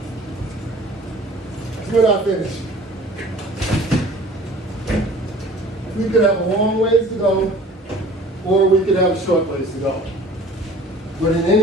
We're not finished. We could have a long ways to go, or we could have a short ways to go. But in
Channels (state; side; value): normal; both; correlation 0.47